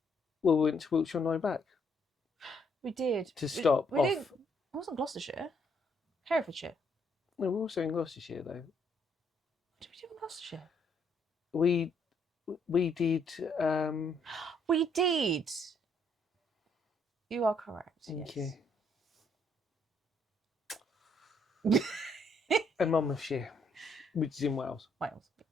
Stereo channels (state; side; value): normal; both; correlation 0.70